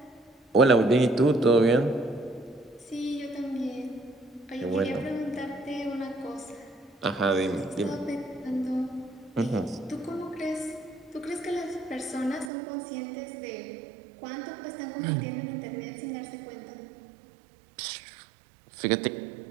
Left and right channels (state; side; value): drops out; left; at 12.5 s